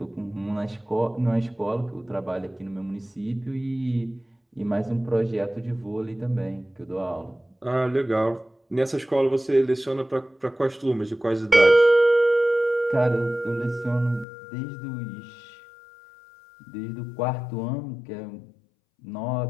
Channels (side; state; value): right; drops out; at 14.2 s